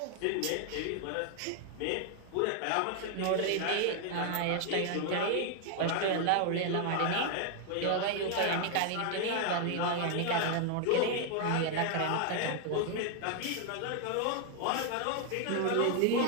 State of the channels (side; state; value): both; different; correlation 0.00